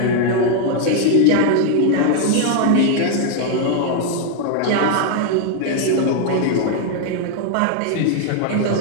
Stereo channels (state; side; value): different; both; correlation 0.00